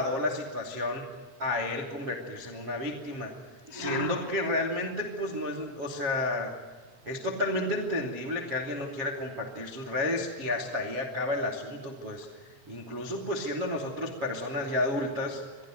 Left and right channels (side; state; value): left; late; 7.3 ms